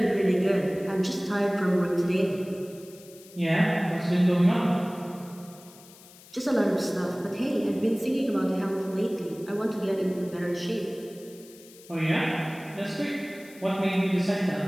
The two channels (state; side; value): noise; left; hiss, 22 dB below the sound